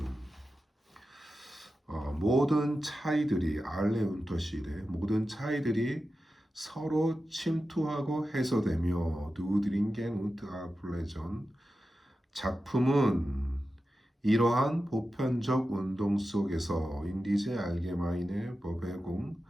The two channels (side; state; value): both; normal; correlation 0.92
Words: 모든 차이들이 알레 운터시레, 모든 차이들이 서로 침투하고 해소되며 누드링겐 운트 아플레전, 작품은 이러한 보편적 운동 속에서 인디제 알게마인의 버베공,